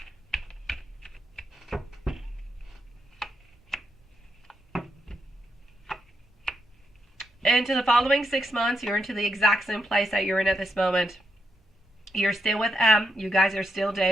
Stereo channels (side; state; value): both; normal; correlation 0.80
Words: Into the following 6 months, you're into the exact same place that you're in at this moment. You're still with M. You guys are still